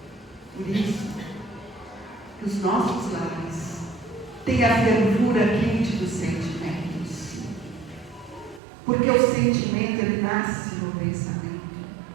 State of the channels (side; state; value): left; drops out; at 8.6 s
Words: Por isso, que os nossos lares tenham a fervura quente dos sentimentos. Porque o sentimento, ele nasce no pensamento.